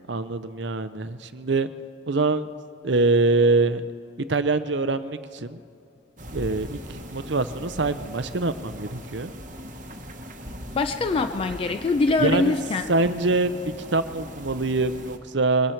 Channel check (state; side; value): normal; both; correlation 0.13